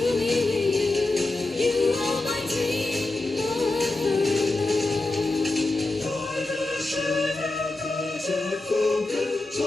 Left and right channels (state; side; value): quieter; right; 3.0 dB